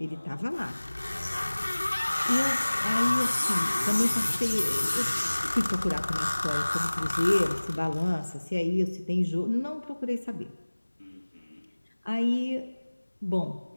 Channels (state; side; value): inverted; both; correlation -1.00